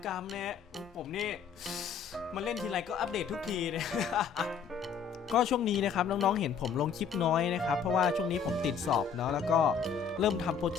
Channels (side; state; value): right; quieter; 6.6 dB